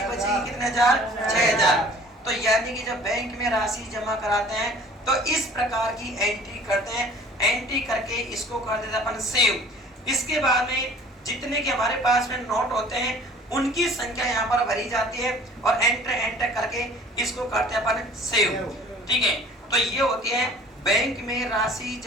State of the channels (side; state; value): both; normal; correlation 0.49